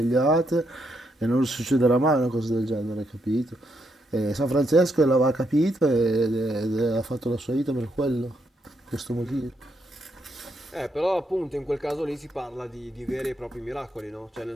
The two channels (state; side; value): normal; both; correlation 0.78